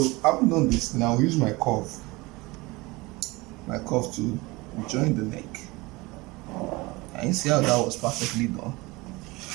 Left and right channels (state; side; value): quieter; left; 22.9 dB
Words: having done this, now use my curve to join the neck. And you see how that was perfectly done.